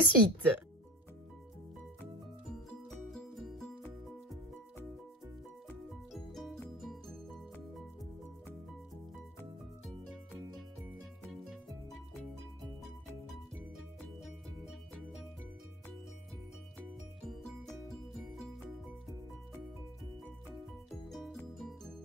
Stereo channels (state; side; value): normal; both; correlation 0.32